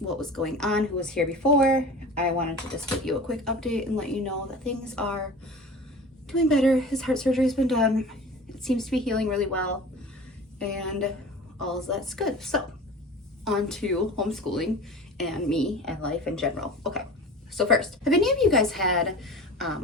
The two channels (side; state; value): both; normal; correlation 0.37